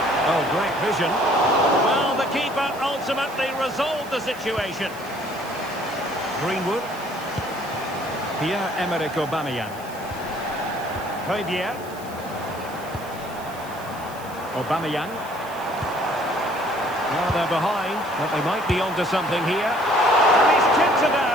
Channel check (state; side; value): noise; right; hiss, 20 dB below the sound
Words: Oh, great vision. Well, the keeper ultimately resolved the situation. Greenwood. Pierre-Emerick Aubameyang. Højbjerg. Aubameyang. Well, they're behind, but they might be onto something here. And he's tipped it